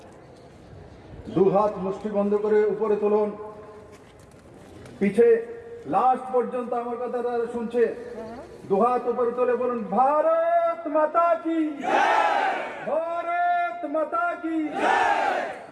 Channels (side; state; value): both; identical; correlation 1.00